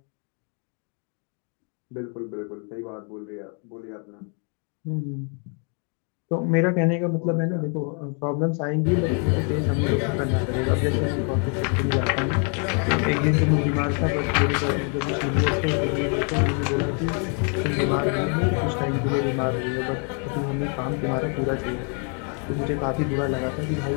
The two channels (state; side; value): quieter; right; 40.0 dB